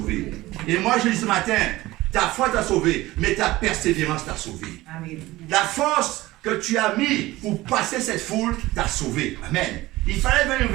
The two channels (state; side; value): quieter; left; 18.3 dB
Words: Et moi je dis ce matin, ta foi t'a sauvée, mais ta persévérance t'a sauvée. La force que tu as mis pour passer cette foule t'a sauvé. Amen. Il fallait venir